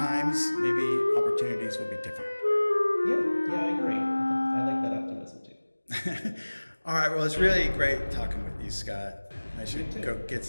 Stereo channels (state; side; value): inverted; both; correlation -1.00